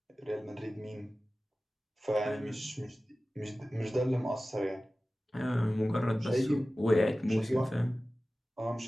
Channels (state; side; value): normal; both; correlation 0.96